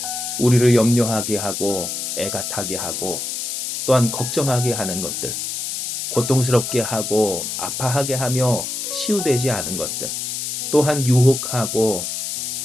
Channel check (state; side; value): noise; left; hiss, 4 dB below the sound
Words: 우리를 염려하게 하고 애가 타게 하고 또한 걱정하게 하는 것들, 고통스럽게 하고 아파하게 하며 치유되지 않은 것들, 또한 유혹하고